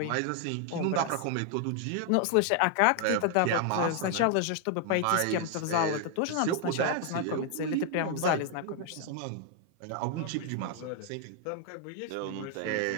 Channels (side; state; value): both; different; correlation 0.00